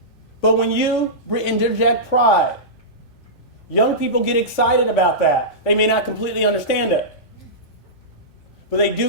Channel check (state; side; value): normal; both; correlation -0.16